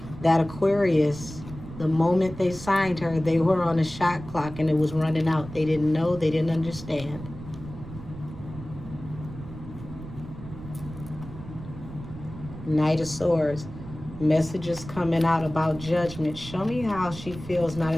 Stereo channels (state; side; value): noise; right; rumble, 13 dB below the sound